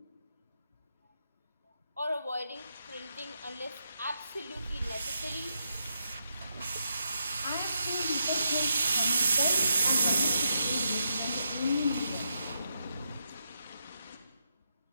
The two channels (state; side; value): inverted; both; correlation -0.81